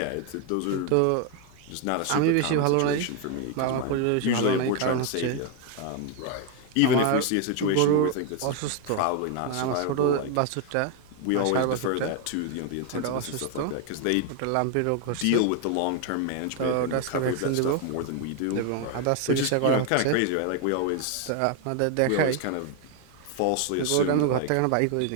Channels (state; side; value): different; both; correlation 0.01